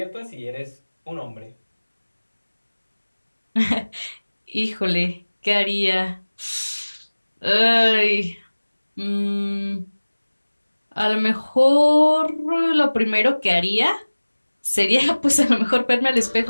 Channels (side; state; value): both; inverted; correlation -1.00